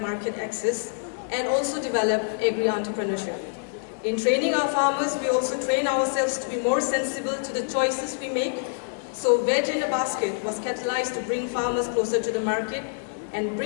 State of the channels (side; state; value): right; silent; digital silence